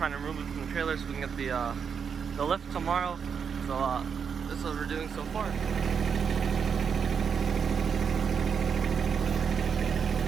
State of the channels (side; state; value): left; quieter; 6.7 dB